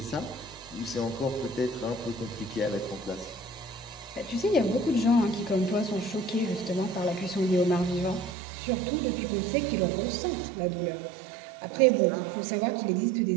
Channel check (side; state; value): left; drops out; at 8.3 s